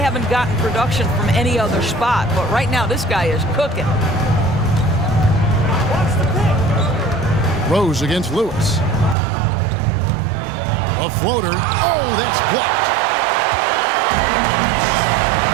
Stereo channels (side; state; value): left; drops out; at 9.2 s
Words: gotten production from any other spot, but right now this guy is cooking. Rose against Lewis. A floater. Oh, that's blocked.